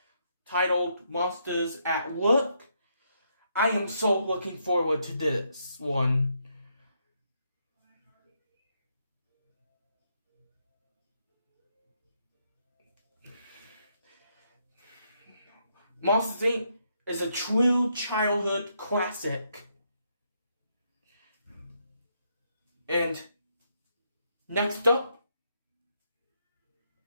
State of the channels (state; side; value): inverted; both; correlation -0.76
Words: titled Monsters at Work. I am so looking forward to this one. Monsters, Inc. is a true childhood classic. And next up